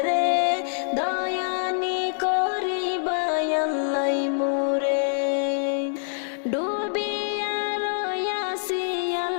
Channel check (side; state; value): right; silent; digital silence